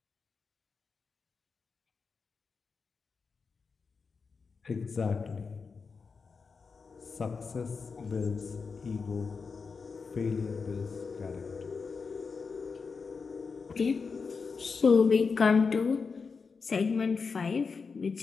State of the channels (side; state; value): right; quieter; 5.0 dB